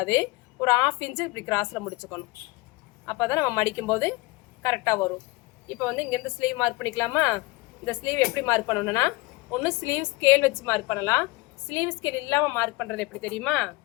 ஒரு 1/2 இன்ச்சு இப்படி கிராஸில் முடிச்சுக்கணும். அப்போ தான் நம்ம மடிக்கும்போது கரெக்டாக வரும். இப்போ வந்து இங்கேருந்து ஸ்லீவ் மார்க் பண்ணிக்கலாமா? இந்த ஸ்லீவ் எப்படி மார்க் பண்ணணும்னா, ஒன்று ஸ்லீவ் ஸ்கேல் வச்சு மார்க் பண்ணலாம். ஸ்லீவ் ஸ்கேல் இல்லாமல் மார்க் பண்ணுறது எப்படி தெரியுமா?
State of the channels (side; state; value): right; quieter; 23.0 dB